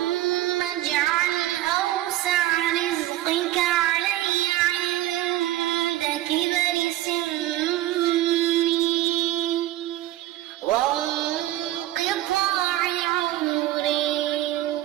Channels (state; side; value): quieter; left; 14.7 dB